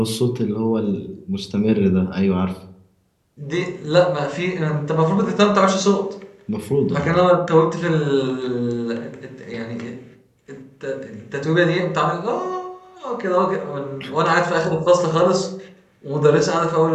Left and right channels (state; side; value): identical; both; correlation 1.00